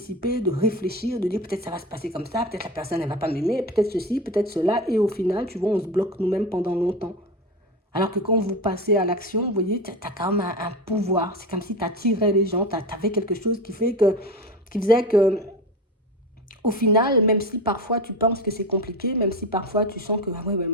de réfléchir, de dire peut-être ça va se passer comme ça, peut-être la personne elle va pas m'aimer, peut-être ceci, peut-être cela. Et au final, tu vois, on se bloque nous-mêmes pendant longtemps. Alors que quand vous passez à l'action, vous voyez, tu as quand même un pouvoir. C'est comme si tu attirais les gens, tu avais quelque chose qui faisait que, au final, même si parfois tu penses que c'est compliqué, même si parfois tu sens que, ah ouais, mais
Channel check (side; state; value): both; normal; correlation 0.24